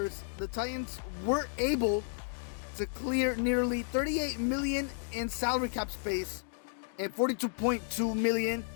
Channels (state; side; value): silent; right; digital silence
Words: the Titans were able to clear nearly $38 million in salary cap space and $42.2 million